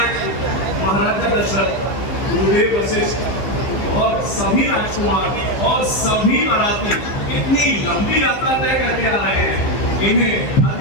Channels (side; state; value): right; late; 15 ms